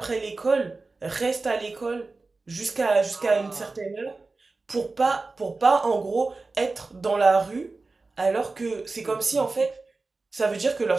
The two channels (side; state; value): left; quieter; 3.7 dB